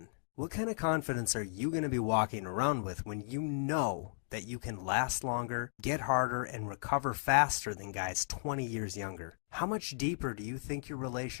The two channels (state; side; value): silent; right; digital silence